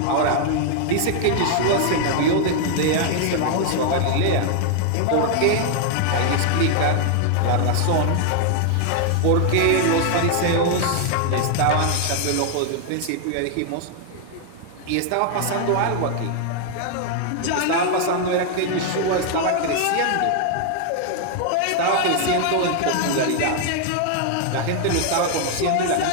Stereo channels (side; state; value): both; different; correlation 0.00